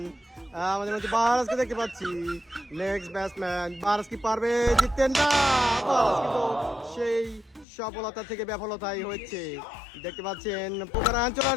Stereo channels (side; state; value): right; drops out; at 7.7 s